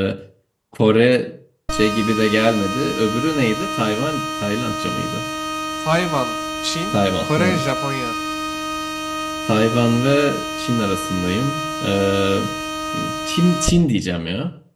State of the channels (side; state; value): both; identical; correlation 1.00